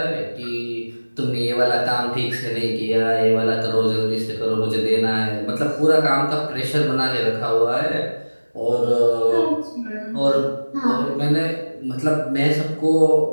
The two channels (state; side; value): inverted; both; correlation -1.00